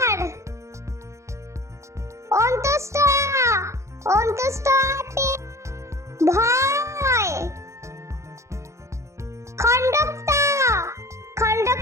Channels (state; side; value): late; left; 0.14 ms